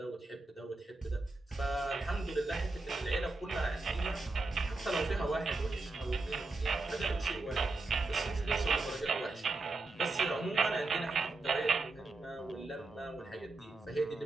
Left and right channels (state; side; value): quieter; left; 3.4 dB